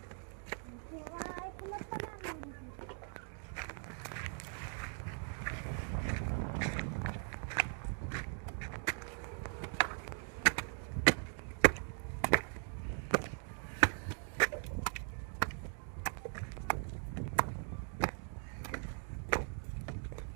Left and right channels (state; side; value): silent; left; 51 dB below the other